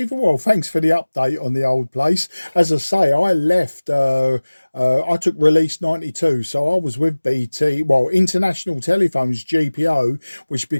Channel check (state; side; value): inverted; both; correlation -1.00